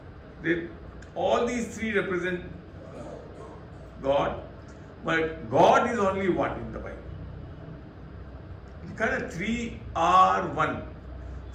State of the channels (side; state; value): both; identical; correlation 1.00